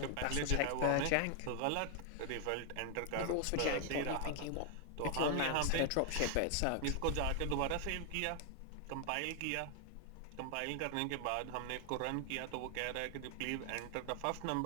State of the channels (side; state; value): both; different; correlation 0.00